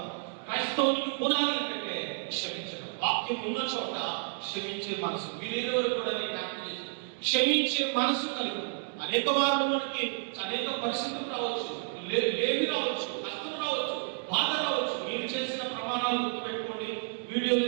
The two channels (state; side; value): silent; left; digital silence